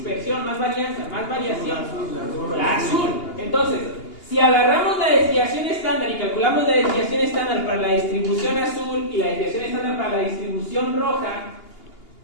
más varianza, más variación? La azul. Entonces, Si agarramos la desviación estándar y calculamos la desviación estándar para la distribución azul y la desviación estándar para la distribución roja,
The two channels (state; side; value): late; right; 2.8 ms